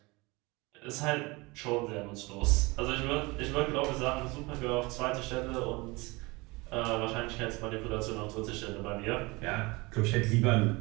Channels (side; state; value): left; quieter; 24.5 dB